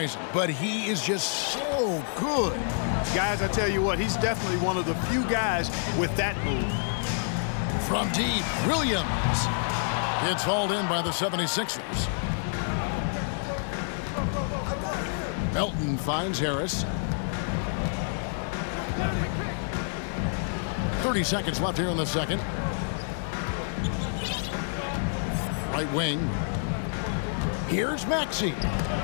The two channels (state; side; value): silent; right; 59 dB below the other